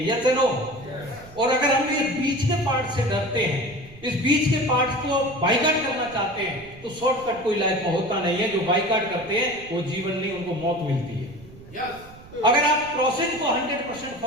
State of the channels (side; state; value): right; noise; rumble, 20 dB below the sound